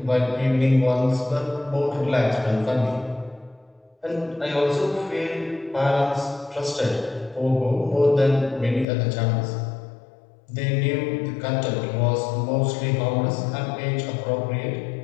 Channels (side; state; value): right; drops out; at 8.8 s